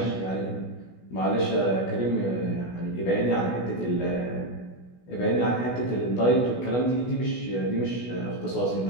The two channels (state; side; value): late; right; 16 ms